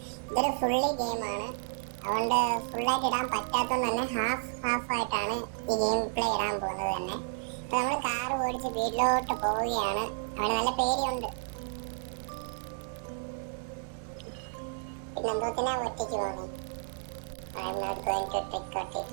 ഇതൊരു ഫുള്ളി ഗെയിമാണ്, അതുകൊണ്ട് ഫുള്ളായിട്ട് ഇടാൻ പറ്റാത്തതുകൊണ്ട് തന്നെ ഹാഫ് ആയിട്ടാണ് ഈ ഗെയിം പ്ലേ ഇടാൻ പോകുന്നത് തന്നെ. ഇപ്പൊ നമ്മൾ കാർ ഓടിച്ച് വീട്ടിലോട്ട് പോവുകയാണ്. അവന് നല്ല പേടിയുണ്ട്. പിന്നെ എന്തോത്തിനാ ഒറ്റയ്ക്ക് പോകുന്നേ? I am not going to trick or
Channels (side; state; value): left; silent; 56 dB below the other